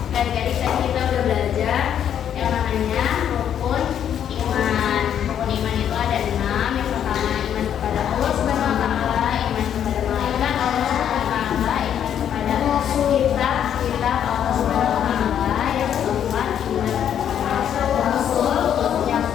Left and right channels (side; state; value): right; quieter; 9.4 dB